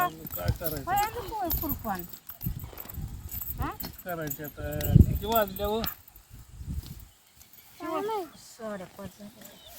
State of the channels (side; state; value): both; identical; correlation 1.00